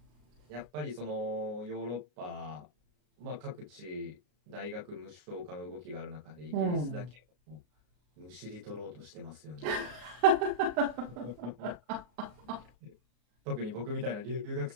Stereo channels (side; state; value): left; late; 33 ms